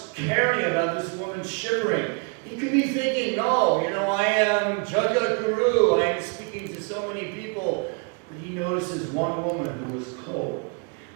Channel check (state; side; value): quieter; left; 35.2 dB